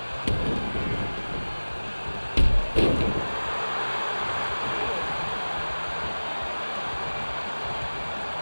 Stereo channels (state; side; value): inverted; both; correlation -1.00